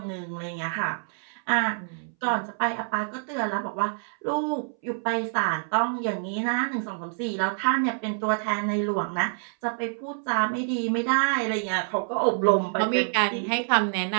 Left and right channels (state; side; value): silent; left; 60 dB below the other